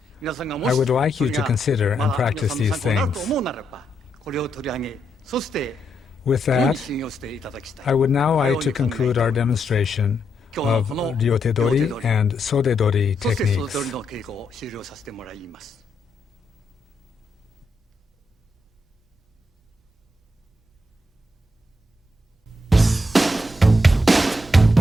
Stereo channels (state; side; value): normal; both; correlation 0.81